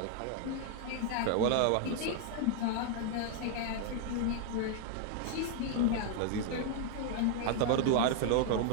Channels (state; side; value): different; both; correlation 0.00